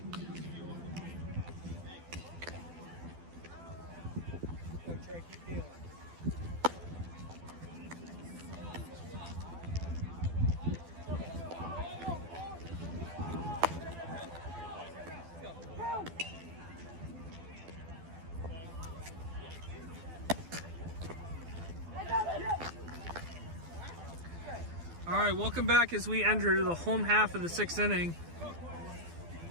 Go, Trey, keep dealing. All right, welcome back as we enter the home half of the 6th inning.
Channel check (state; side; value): late; left; 12 ms